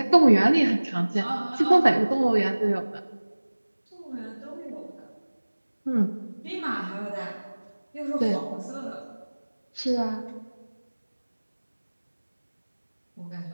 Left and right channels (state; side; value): inverted; both; correlation -1.00